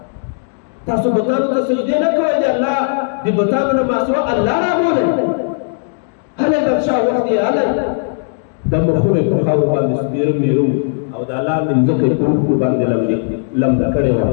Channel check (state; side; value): silent; right; digital silence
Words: تاسو بتانو ته سجدې نه کوئ د الله د بتانو نه ماسوا الله رابولئ هلئ بادشاه وخت یې هلئ د مخونه په خاورو باندې سپېره میرو او د لاندې مځکه یې په اوښکو باندې لمده کړې وه